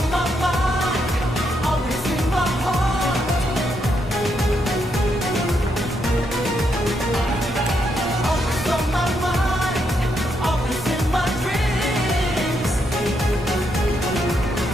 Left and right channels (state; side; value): normal; both; correlation 0.78